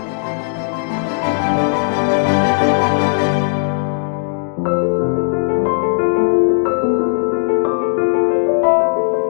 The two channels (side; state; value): right; silent; digital silence